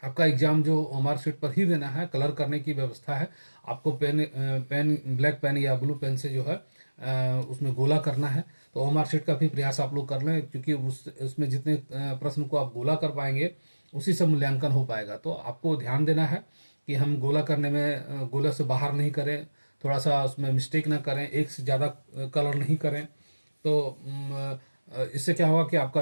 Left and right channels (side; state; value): both; inverted; correlation -1.00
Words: आपका एग्ज़ाम जो OMR शीट पर ही देना है। कलर करने की व्यवस्था है। आपको पेन ब्लैक पेन या ब्लू पेन से जो है उसमें गोला करना है। तो OMR शीट का भी प्रयास आप लोग कर लें, क्योंकि उसमें जितने प्रश्न को आप गोला कर पाएंगे, उसी से मूल्यांकन हो पाएगा। तो आपको ध्यान देना है कि हम गोला करने में गोला से बाहर नहीं करें, थोड़ा सा उसमें मिस्टेक ना करें, एक से ज़्यादा कलर नहीं करें। तो इससे क्या होगा कि आपका